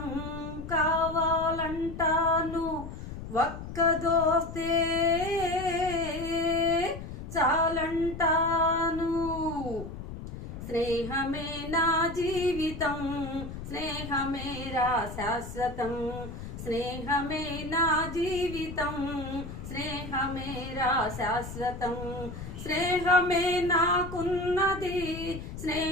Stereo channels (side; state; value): left; noise; rumble, 10 dB below the sound